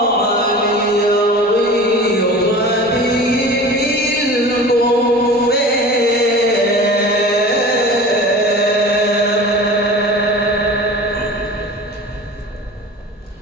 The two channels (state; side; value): normal; both; correlation 0.38